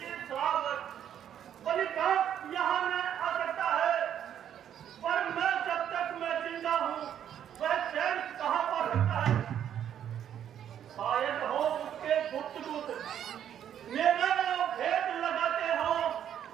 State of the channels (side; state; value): left; quieter; 9.8 dB